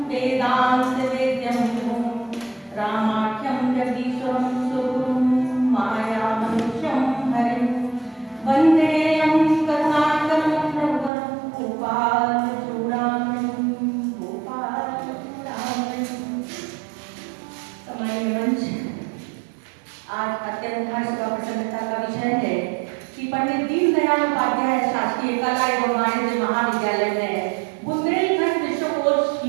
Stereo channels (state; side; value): drops out; left; at 11.1 s